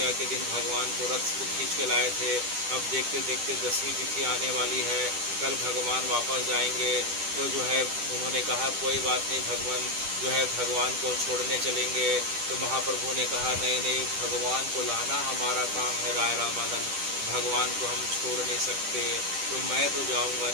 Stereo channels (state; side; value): late; left; 10 ms